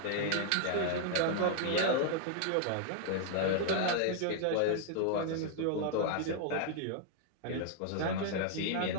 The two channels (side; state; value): both; different; correlation 0.00